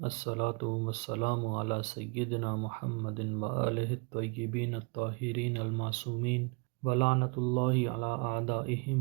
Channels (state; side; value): quieter; left; 31.7 dB